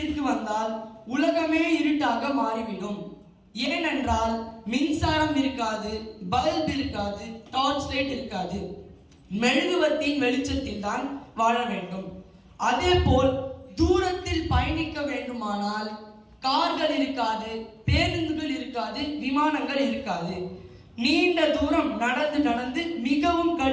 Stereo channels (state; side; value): identical; both; correlation 1.00